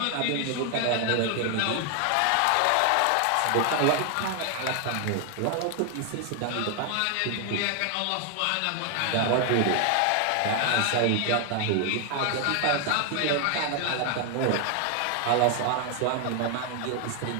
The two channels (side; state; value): both; different; correlation 0.00